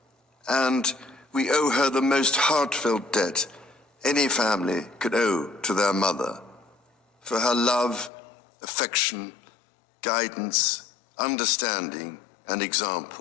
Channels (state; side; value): drops out; right; at 8.1 s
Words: And we owe her the most heartfelt debt any family could owe to their mother, for her love, affection, guidance, understanding, and